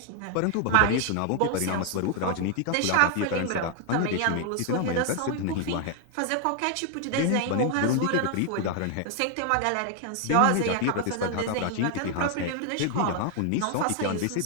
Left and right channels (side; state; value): both; different; correlation 0.00